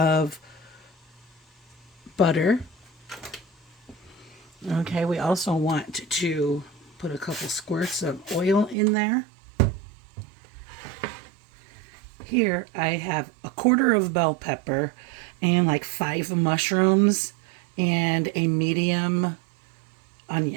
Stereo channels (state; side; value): drops out; left; at 8.8 s